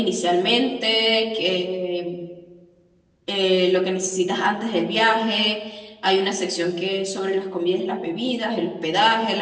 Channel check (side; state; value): both; identical; correlation 1.00